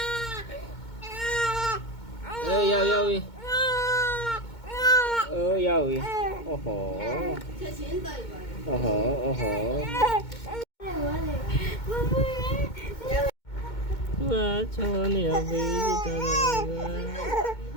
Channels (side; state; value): right; late; 2.2 ms